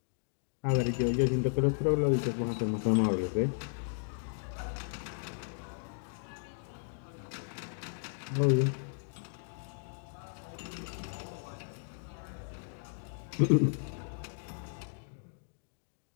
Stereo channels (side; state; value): right; silent; digital silence